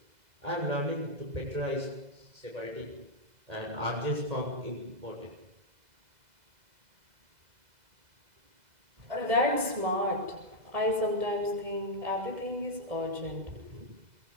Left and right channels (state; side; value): late; left; 2.0 ms